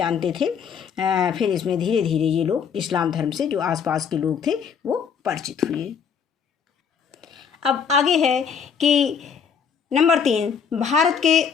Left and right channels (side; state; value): right; quieter; 6.9 dB